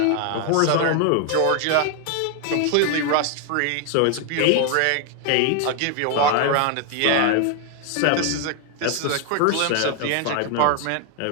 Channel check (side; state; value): both; different; correlation 0.00